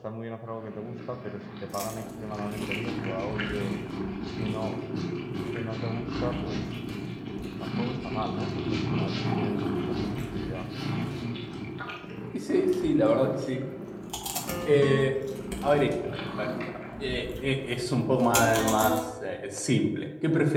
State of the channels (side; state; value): both; identical; correlation 1.00